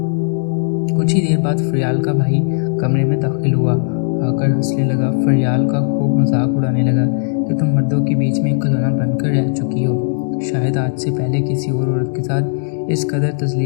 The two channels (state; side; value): silent; right; digital silence